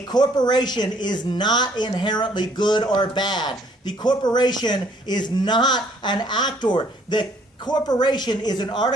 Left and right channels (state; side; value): normal; both; correlation 0.62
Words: corporation is not inherently good or bad. The corporation is not an actor. The corporation is an